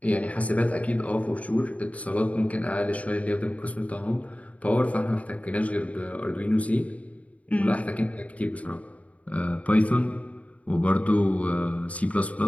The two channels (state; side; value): late; right; 0.067 ms